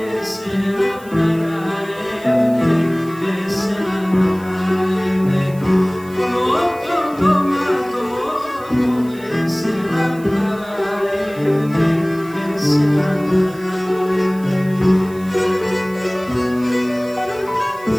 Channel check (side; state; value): right; noise; hiss, 23 dB below the sound